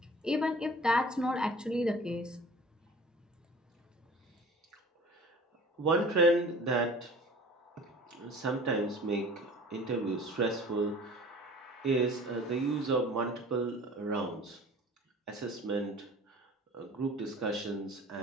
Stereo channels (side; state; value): both; normal; correlation 0.45